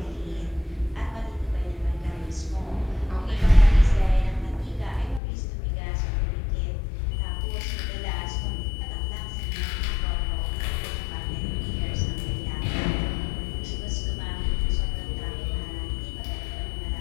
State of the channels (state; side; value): drops out; right; at 5.2 s